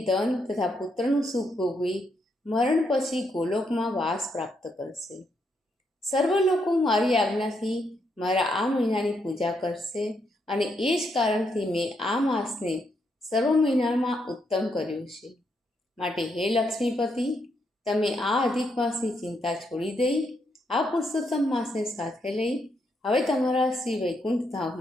ધન તથા પુત્રનું સુખ ભોગવી મરણ પછી ગોલોકમાં વાસ પ્રાપ્ત કરશે. સર્વ લોકો મારી આજ્ઞાથી મારા આ મહિનાની પૂજા કરશે, અને એ જ કારણથી મેં આ માસને સર્વ મહિનામાં ઉત્તમ કર્યું છે. માટે હે લક્ષ્મીપતિ, તમે આ અધિક માસની ચિંતા છોડી દઈ આ પુરુષોત્તમ માસને સાથે લઈ હવે તમારા શ્રી વૈકુંઠ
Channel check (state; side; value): normal; both; correlation 0.78